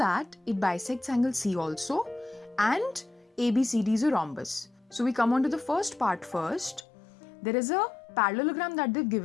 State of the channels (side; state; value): right; drops out; at 6.9 s